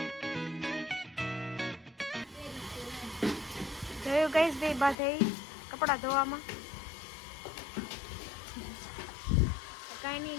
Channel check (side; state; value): right; drops out; at 5.0 s